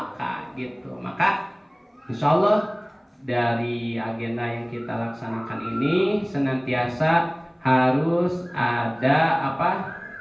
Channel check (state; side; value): identical; both; correlation 1.00